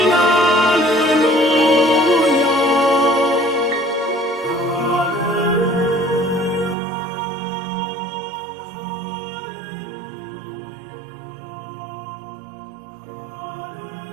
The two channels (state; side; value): drops out; left; at 6.8 s